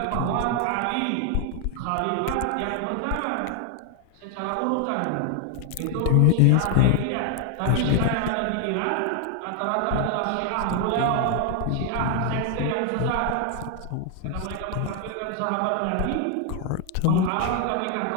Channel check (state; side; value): different; both; correlation 0.00